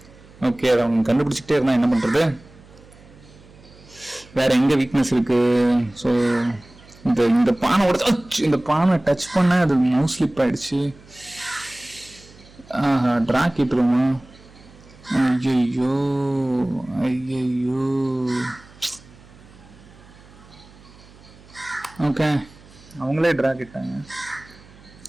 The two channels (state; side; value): noise; right; hum, 24 dB below the sound